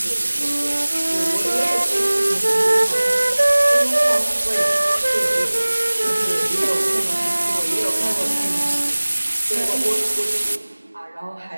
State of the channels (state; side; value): inverted; both; correlation -1.00